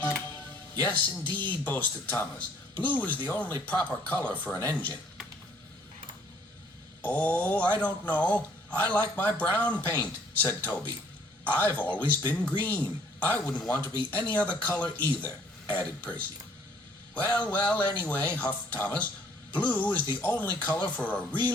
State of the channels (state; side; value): normal; both; correlation 0.60